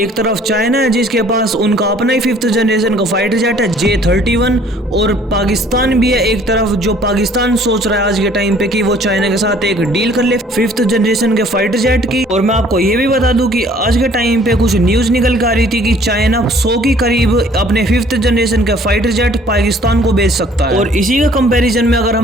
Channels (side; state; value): both; normal; correlation 0.56